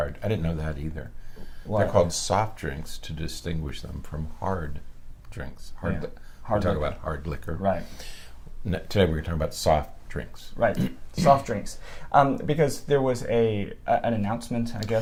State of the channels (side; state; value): both; identical; correlation 1.00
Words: I didn't know that either. What? They're called soft drinks to distinguish them from hard drinks. Hard we talk liquor. about hard liquor. Right. Today we're going to talk about soft drinks. Right, soft drinks. Because there was an announcement, I